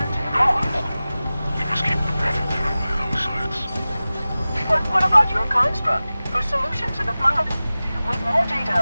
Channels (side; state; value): both; inverted; correlation -0.96